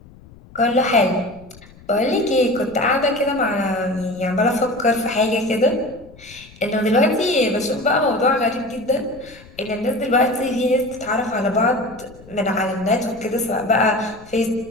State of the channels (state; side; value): noise; left; rumble, 23 dB below the sound